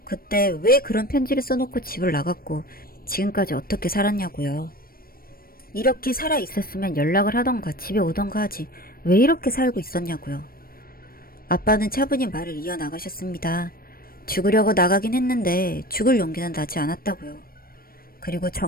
그때 왜 그런 편지를 써놓고 집을 나갔고 지금까지 어떻게 살았냐고요. 이렇게 살아있었으면 연락을 하던가 집에 오던가 하지 왜 이렇게 살고 있었냐고요. 아빠는 차분히 말을 이어나가셨습니다. 죽으려고 나가긴 했는데 죽을 용기는 나지 않았다고요. 그리고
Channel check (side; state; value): right; late; 0.43 ms